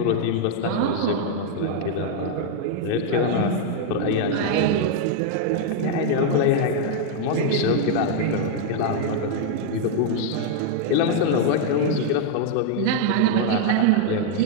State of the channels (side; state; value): both; different; correlation 0.00